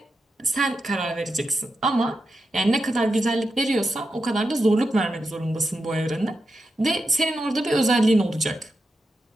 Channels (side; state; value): both; normal; correlation 0.88